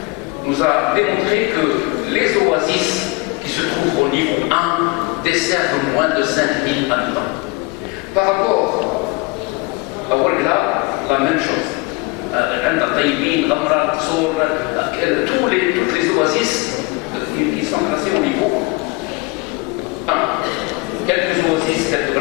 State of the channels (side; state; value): right; quieter; 25.8 dB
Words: nous a démontré que les oasis qui se trouvent au niveau 1 desservent moins de 5000 habitants. Par rapport à Ouargla, la même chose. Toutes les oasis qui sont classées au niveau 1. Quelques oasis, telles que